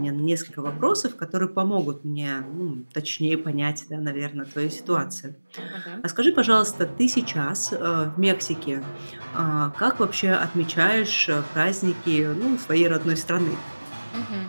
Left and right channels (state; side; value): inverted; both; correlation -1.00